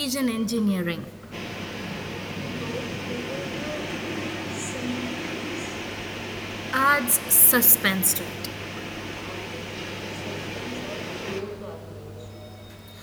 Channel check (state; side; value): identical; both; correlation 1.00